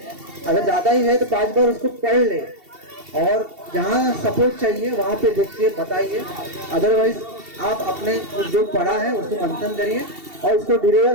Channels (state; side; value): late; left; 2.7 ms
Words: अगर ज़्यादा ही है तो 5 बार उसको पढ़ ले और जहाँ सपोर्ट चाहिए वहाँ पे देखिए, बताइए। अदरवाइज आप अपने जो पढ़ा है उसको मंथन करिए और उसको